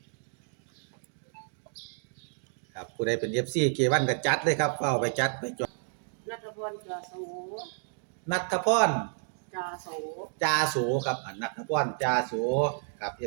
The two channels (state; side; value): silent; left; digital silence